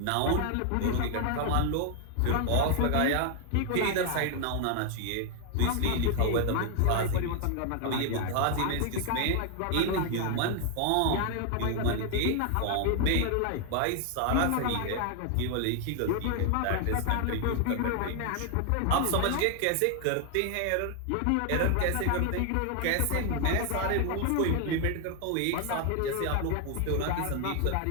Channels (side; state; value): both; different; correlation 0.00